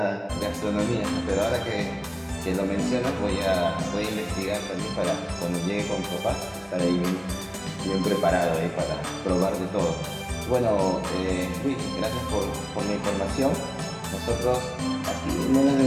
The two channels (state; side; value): identical; both; correlation 1.00